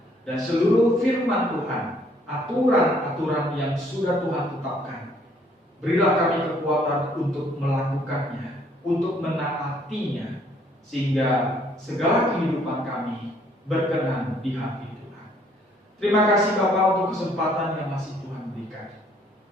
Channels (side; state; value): both; normal; correlation 0.64